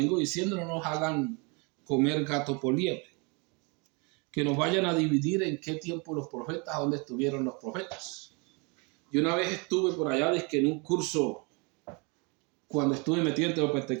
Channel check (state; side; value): quieter; left; 31.2 dB